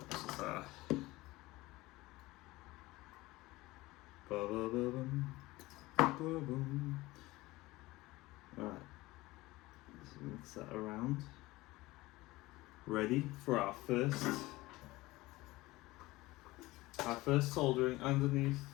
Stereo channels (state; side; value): quieter; right; 19.7 dB